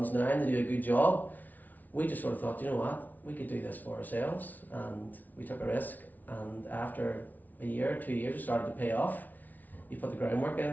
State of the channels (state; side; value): late; right; 0.079 ms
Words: now and they do a good job. We just sort of thought, you know what, we could do this for ourselves, and we took a risk. And after a year, 2 years, it started to pay off. You put the groundwork in,